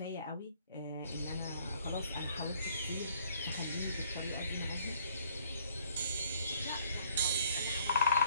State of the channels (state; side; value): inverted; both; correlation -0.62